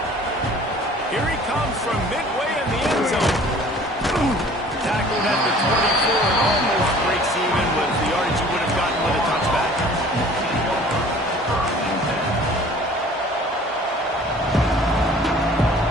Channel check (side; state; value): both; normal; correlation 0.49